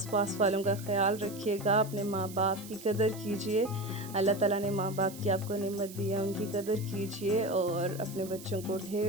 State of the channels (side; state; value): right; noise; hiss, 16 dB below the sound